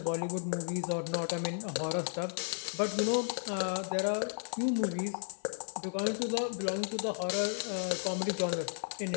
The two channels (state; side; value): silent; right; digital silence